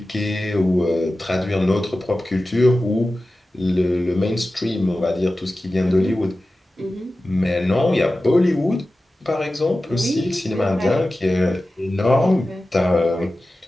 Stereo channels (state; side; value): normal; both; correlation 0.95